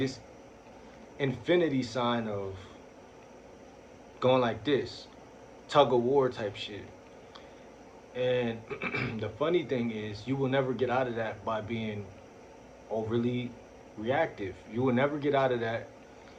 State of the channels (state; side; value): identical; both; correlation 1.00